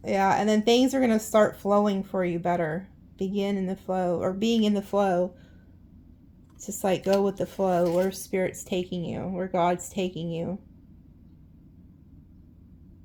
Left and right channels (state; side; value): identical; both; correlation 1.00